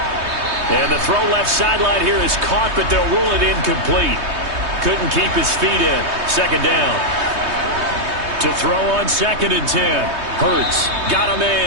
And the throw left sideline here is caught, but they'll rule it incomplete. Couldn't keep his feet in. 2nd down. To throw on 2nd and 10. Hurts got a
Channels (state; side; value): late; left; 3.2 ms